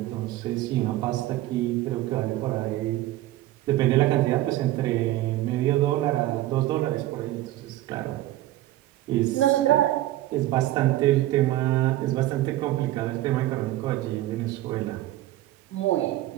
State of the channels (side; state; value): left; quieter; 15.5 dB